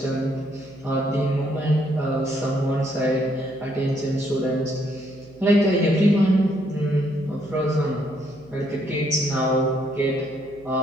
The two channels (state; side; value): noise; right; hum, 25 dB below the sound